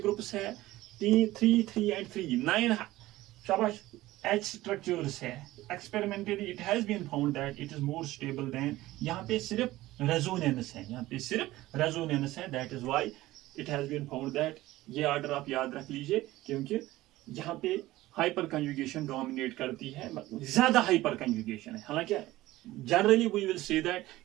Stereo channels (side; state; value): left; quieter; 17.0 dB